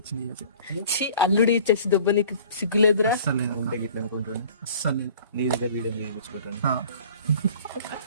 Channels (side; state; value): both; inverted; correlation -0.47